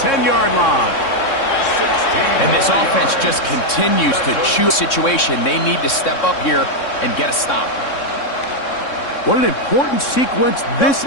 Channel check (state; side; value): late; right; 3.6 ms